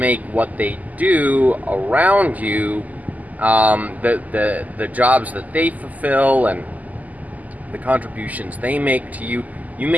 what they do around you, the jobs that they fulfill and the contributions they make to you. You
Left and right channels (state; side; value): late; left; 0.079 ms